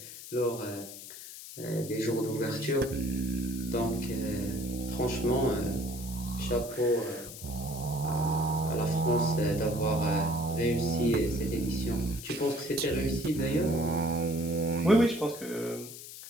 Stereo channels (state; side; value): noise; left; hiss, 13 dB below the sound